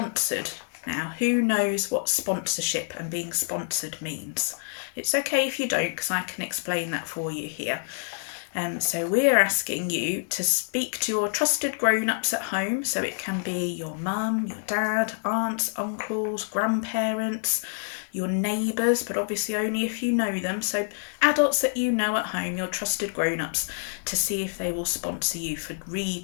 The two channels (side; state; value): right; silent; digital silence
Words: Now, who knows what sponsorship and being sponsored means? It's okay if you don't, because I can explain that for you here. So we're asking you to speak to your trusted grown-ups at home. So it can be your mum, your dad, aunts, uncles, grandparents, your neighbours, but obviously only if you know them. So adults that you know at home, your trusted grown-ups, to see if they will sponsor you for